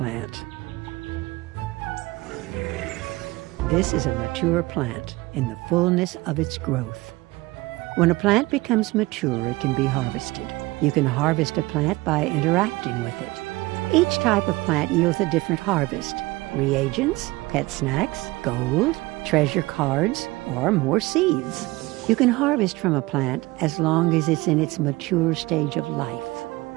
This is a mature plant in the fullness of its growth. When a plant becomes mature, it can be harvested. You can harvest a plant by interacting with it. Each type of plant yields a different harvest: reagents, pet snacks, gold, treasure cards, or more seeds. You can harvest from a plant as long as it's in its mature stage of life.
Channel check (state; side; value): quieter; left; 21.1 dB